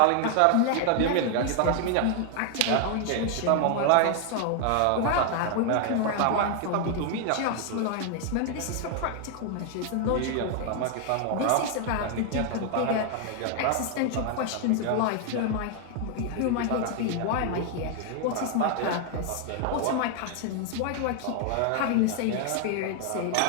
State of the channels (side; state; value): both; different; correlation 0.00